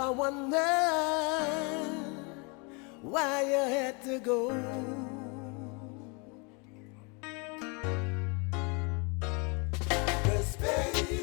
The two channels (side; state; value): right; quieter; 32.1 dB